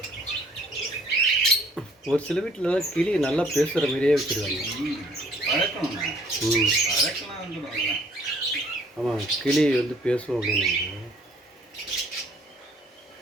ஒரு சில வீட்டில் கிளி நல்லா பேசுகிற மாதிரியே வச்சுருக்காங்க. பழக்கணும். பழக்கலாம் வந்துடும். ஆமாம், கிளி வந்து பேசுவோம் அப்படின்னு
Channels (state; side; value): normal; both; correlation 0.59